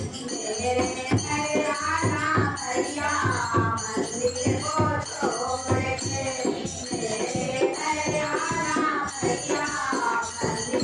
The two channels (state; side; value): identical; both; correlation 1.00